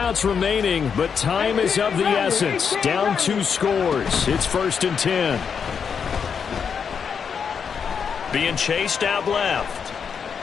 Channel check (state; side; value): quieter; right; 6.7 dB